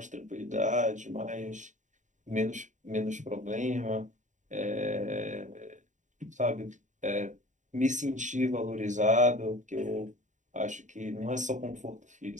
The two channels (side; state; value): left; late; 0.36 ms